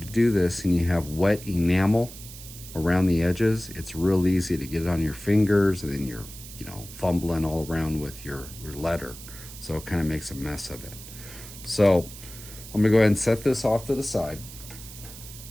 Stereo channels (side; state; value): right; noise; hiss, 15 dB below the sound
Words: do this and you have wet enamel around the edges, it's real easy to get it on your fingers, and then you're, fumbling all around with your letter. So it kind of makes a mess of it. So I'm gonna go ahead and set this off to the side.